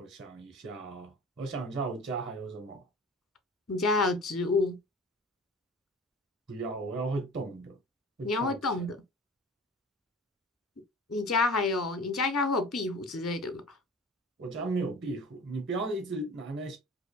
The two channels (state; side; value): normal; both; correlation 0.41